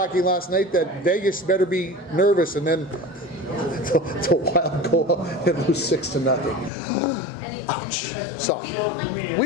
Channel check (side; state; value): right; drops out; at 6.7 s